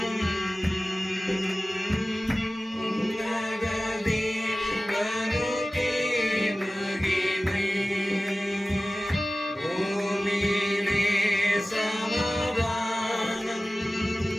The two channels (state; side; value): normal; both; correlation 0.97